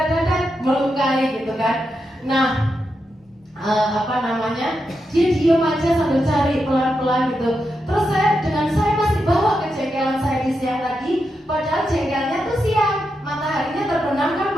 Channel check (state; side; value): normal; both; correlation 0.86